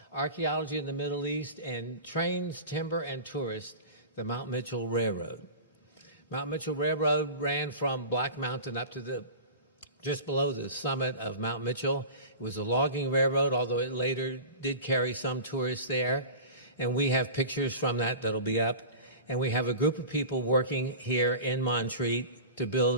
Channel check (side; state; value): both; inverted; correlation -0.34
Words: Archaeology in the Middle East and Trains, Timber, and Tourists, the Mount Mitchell Railroad. Mount Mitchell Railroad ran from Black Mountain up to just below the summit of Mount Mitchell. It was a logging railroad, although it later did carry some tourists there. And we have pictures from that that'll be up. And we have a group of people working here in Montreat to